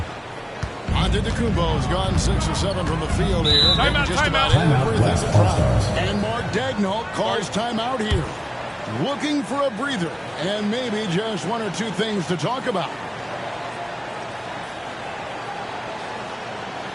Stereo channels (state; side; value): identical; both; correlation 1.00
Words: Antetokounmpo's gone 6 or 7 from the field here. Timeout, just about everything to try. And Mark Daigneault calls timeout here. looking for a breather and maybe just one or two things to talk about.